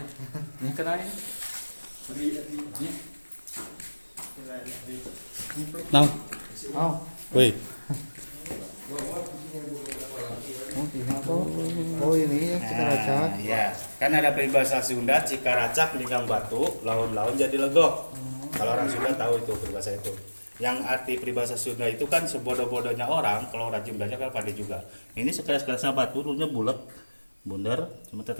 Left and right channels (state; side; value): inverted; both; correlation -1.00